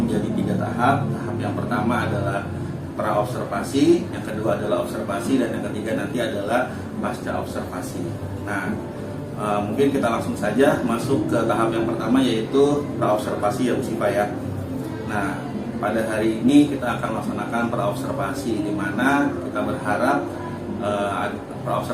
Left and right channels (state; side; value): identical; both; correlation 1.00